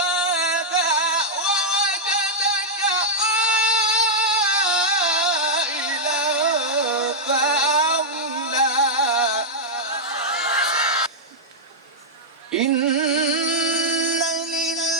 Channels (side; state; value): both; normal; correlation -0.07